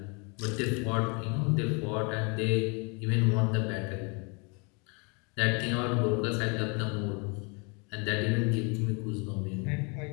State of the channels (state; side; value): quieter; right; 32.5 dB